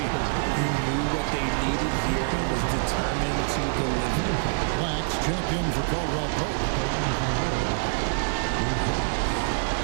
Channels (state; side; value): silent; left; digital silence